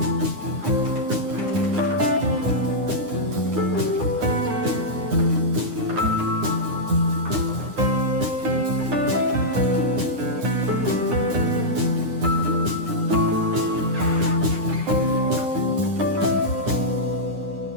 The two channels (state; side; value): late; left; 9.7 ms